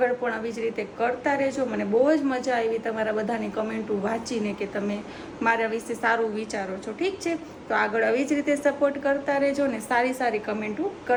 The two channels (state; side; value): identical; both; correlation 1.00